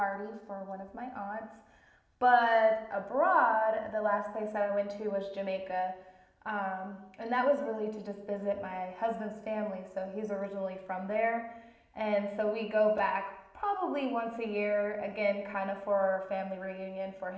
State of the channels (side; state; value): both; identical; correlation 1.00